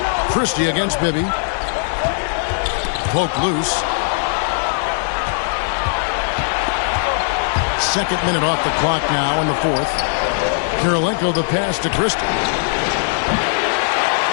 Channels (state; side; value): silent; right; 62 dB below the other